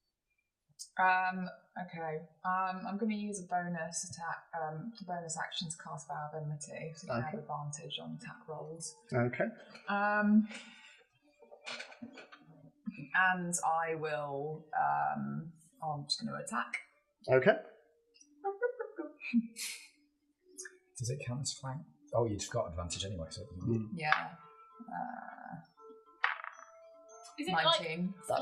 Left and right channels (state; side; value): identical; both; correlation 1.00